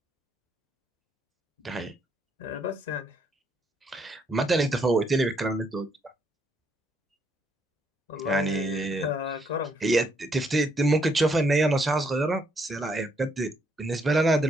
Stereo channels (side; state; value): both; normal; correlation 0.73